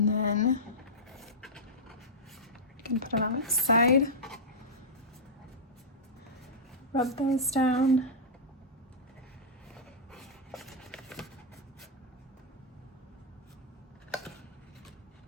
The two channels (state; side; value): normal; both; correlation -0.09